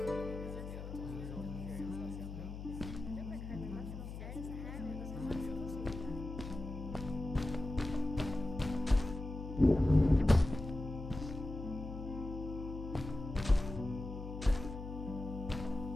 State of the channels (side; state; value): left; noise; hum, 8 dB below the sound